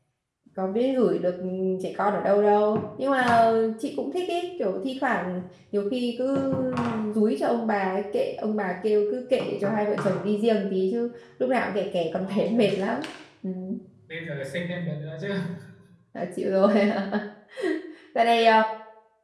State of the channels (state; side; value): identical; both; correlation 1.00